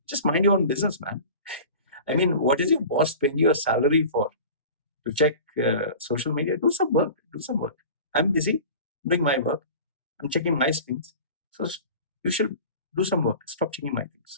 Just mind your own business, man. I mean, what is your boss paying you a salary for? To check social media? Do some work. Do some work. I'm busy doing my work. I'm checking my things. So you should do some work. Stop checking my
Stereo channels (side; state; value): both; inverted; correlation -0.38